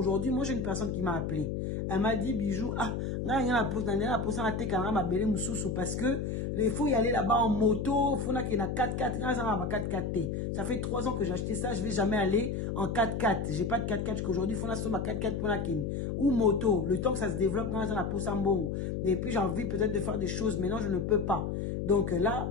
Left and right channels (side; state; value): left; noise; hum, 2 dB below the sound